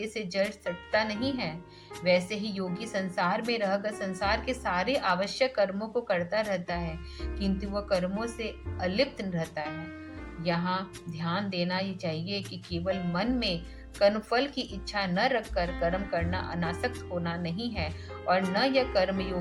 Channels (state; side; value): identical; both; correlation 1.00